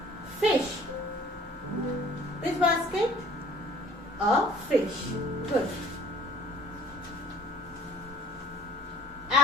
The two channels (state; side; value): normal; both; correlation 0.52